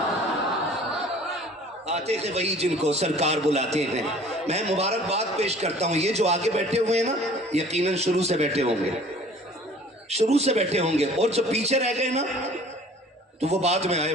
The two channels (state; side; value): normal; both; correlation 0.49